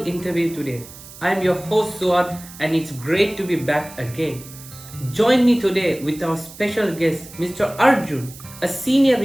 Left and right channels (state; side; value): noise; right; hiss, 17 dB below the sound